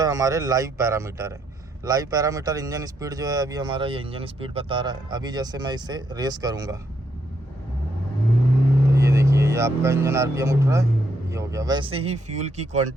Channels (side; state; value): both; normal; correlation 0.76